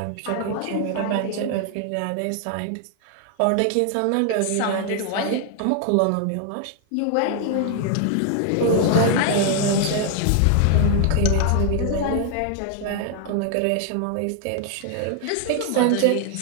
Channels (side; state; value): both; different; correlation 0.00